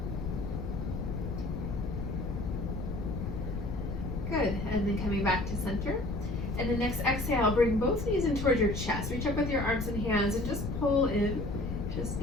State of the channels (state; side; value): noise; left; rumble, 4 dB below the sound